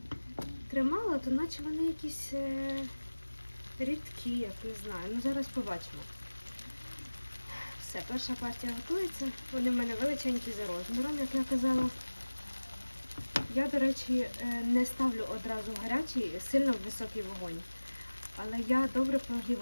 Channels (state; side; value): inverted; both; correlation -1.00